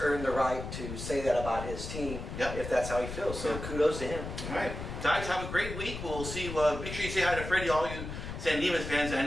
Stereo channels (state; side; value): noise; left; rumble, 7 dB below the sound